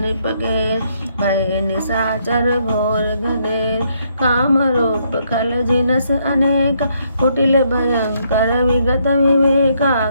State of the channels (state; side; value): inverted; both; correlation -0.73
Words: निपगेर भय निशाचर घोर घनेर काम रूप खल जिनस अनेक कुटिल भयंकर विगत विवेका